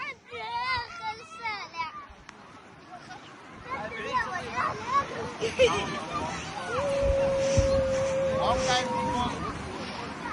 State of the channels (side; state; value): both; identical; correlation 1.00